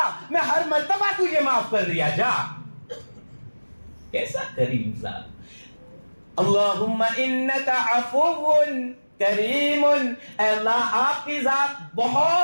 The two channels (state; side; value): inverted; both; correlation -1.00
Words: میں ہر مرتبہ تجھے معاف کر دیا. جا. کیسا کریم ذات. اللہم انکا عفو کریم، اے اللہ آپ کی ذات